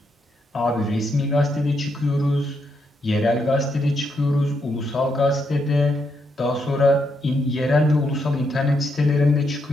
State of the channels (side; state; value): both; normal; correlation 0.79